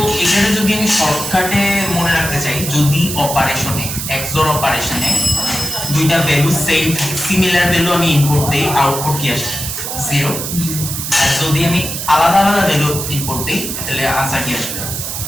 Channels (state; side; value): noise; right; hiss, 5 dB below the sound